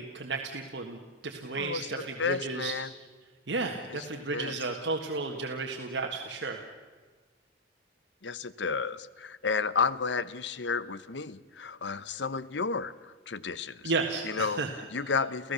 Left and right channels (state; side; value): normal; both; correlation -0.06